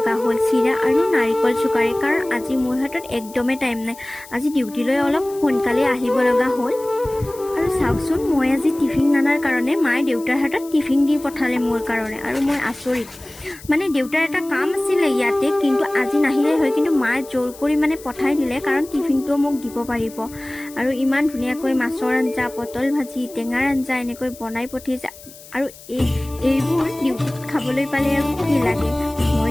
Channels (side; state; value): left; noise; hiss, 19 dB below the sound